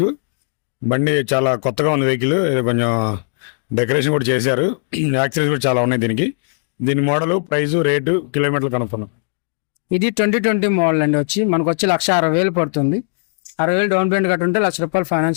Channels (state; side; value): silent; right; digital silence